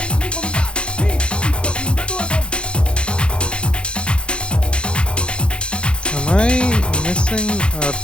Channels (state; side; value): late; right; 0.056 ms